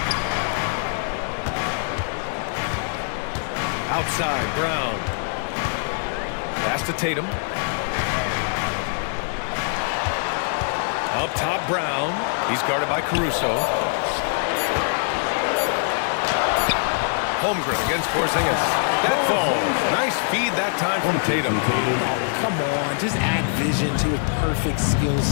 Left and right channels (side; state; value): right; silent; digital silence